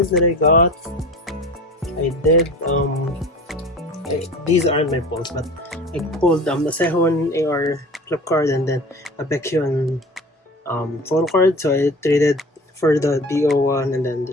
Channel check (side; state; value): both; normal; correlation 0.37